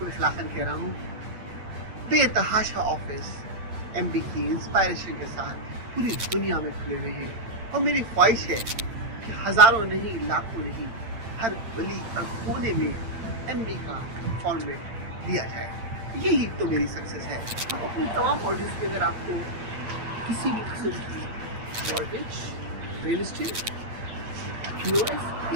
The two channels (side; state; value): left; late; 8.8 ms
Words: इखलाकन कह रहा हूँ, बेतहाशा ऑफिस MD की इंस्पायरेशन के साथ पूरी दुनिया में खुले हुए हैं। और मेरी ख्वाहिश है कि हजारों नहीं, लाखों नहीं, हर गली हर कोने में MD का फॉर्मेट दिया जाए। यही तो मेरी सक्सेस है। अब अपनी तमाम ऑडियंस के अगर आपको किसी भी किस्म की mortgage, real estate, POS,